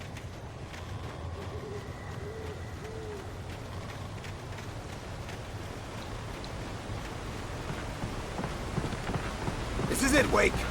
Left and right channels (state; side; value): identical; both; correlation 1.00